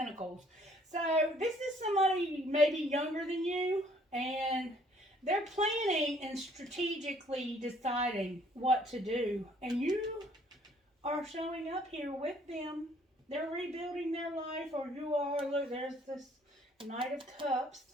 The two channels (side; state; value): both; normal; correlation 0.61